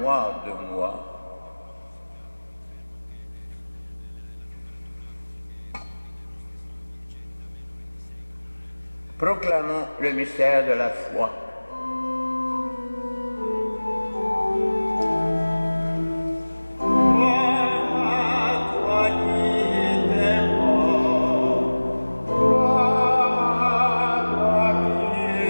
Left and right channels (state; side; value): inverted; both; correlation -1.00